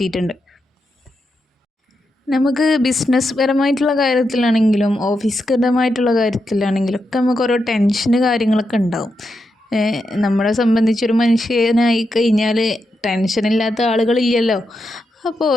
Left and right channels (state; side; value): normal; both; correlation 0.85